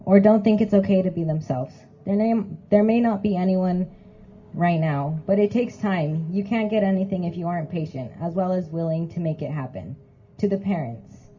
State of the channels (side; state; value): both; identical; correlation 1.00